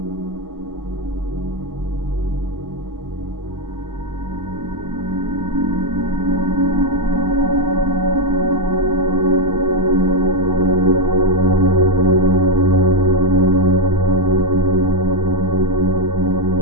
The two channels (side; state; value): left; late; 0.92 ms